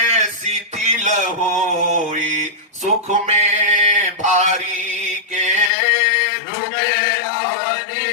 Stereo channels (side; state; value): right; drops out; at 5.7 s